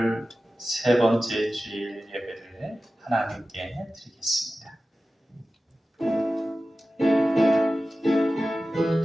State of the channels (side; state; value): both; normal; correlation 0.95